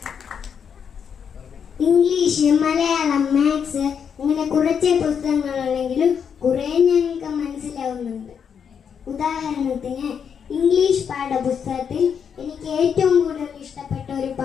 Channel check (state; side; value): quieter; right; 7.3 dB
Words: ഇംഗ്ലീഷ്, മലയാളം, മാത്സ് അങ്ങനെ കുറച്ച് പുസ്തകങ്ങളുണ്ടെങ്കിലും കുറേ ഞങ്ങൾക്ക് മനസ്സിലാവുന്നുണ്ട്. ഉദാഹരണത്തിന് ഇംഗ്ലീഷ് പാഠപുസ്തകത്തിൽ എനിക്ക് ഏറ്റവും കൂടുതൽ ഇഷ്ടപ്പെട്ട ഒരു